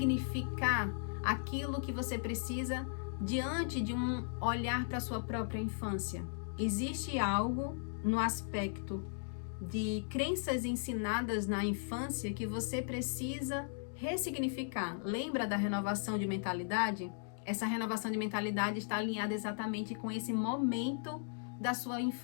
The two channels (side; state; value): right; silent; digital silence